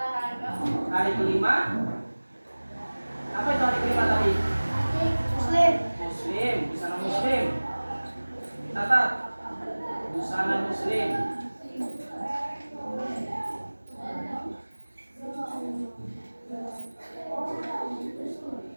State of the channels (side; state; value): both; inverted; correlation -1.00